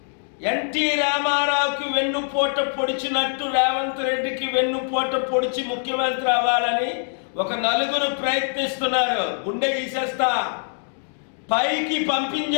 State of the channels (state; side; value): silent; right; digital silence